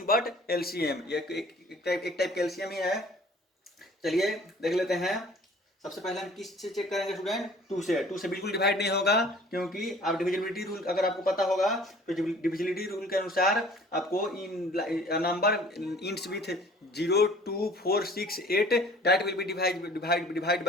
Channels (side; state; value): both; normal; correlation 0.51